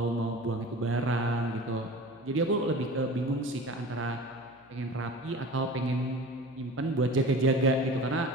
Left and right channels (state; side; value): noise; left; hum, 29 dB below the sound